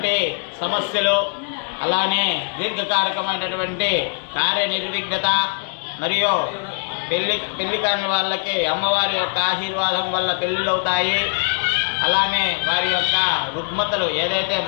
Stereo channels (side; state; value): right; silent; 65 dB below the other